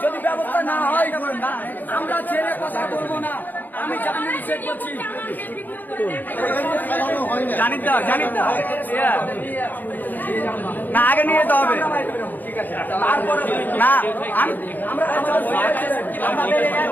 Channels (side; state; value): right; late; 0.088 ms